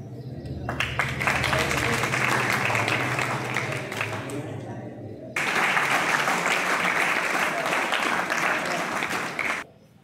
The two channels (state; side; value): identical; both; correlation 1.00